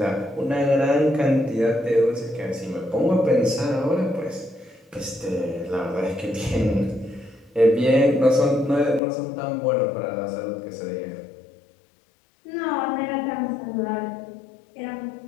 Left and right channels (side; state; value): right; drops out; at 9.0 s